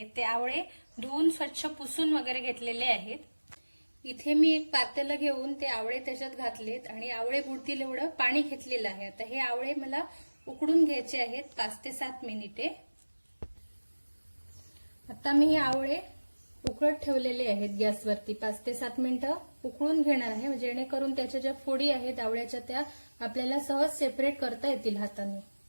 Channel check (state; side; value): inverted; both; correlation -1.00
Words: ते आवळे धुवून स्वच्छ पुसून वगैरे घेतलेले आहेत. इथे मी एक पातेलं घेऊन ते आवळे त्याच्यात घातलेत आणि आवळे बुडतील एवढं पाणी घेतलेलं आहे. आता हे आवळे मला उकडून घ्यायचे आहेत 5 ते 7 मिनिटे. आता मी हे आवळे उकळत ठेवलेले आहेत गॅसवरती. 5 ते 7 मिनिटं उकळून घेणार आहे, जेणेकरून त्याच्या ज्या फोडी आहेत आवळ्याच्या त्या आपल्याला सहज सेपरेट करता येतील हाताने.